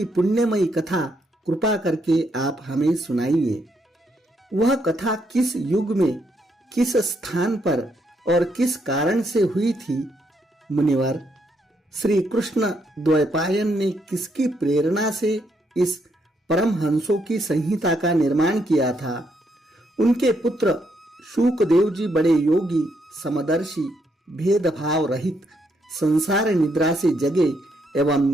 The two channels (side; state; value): both; normal; correlation 0.76